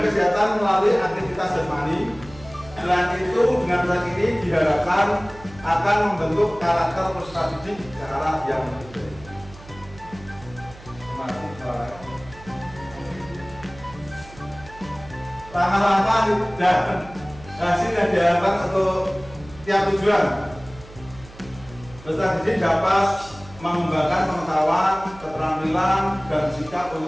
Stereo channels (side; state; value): right; noise; hum, 19 dB below the sound